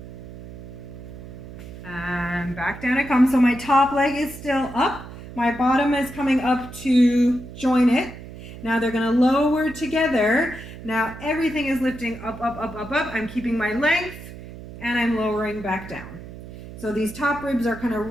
And back down it comes. So my top leg is still up. My bottom is coming up to join it. Now they're going to lower together. Now everything is lifting up. I'm keeping my length and I'm lowering back down. So these top ribs are kind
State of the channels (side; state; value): right; noise; hum, 14 dB below the sound